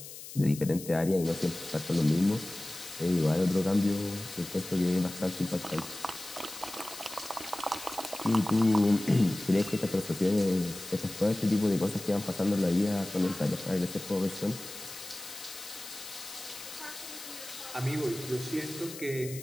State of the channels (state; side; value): noise; left; hiss, 13 dB below the sound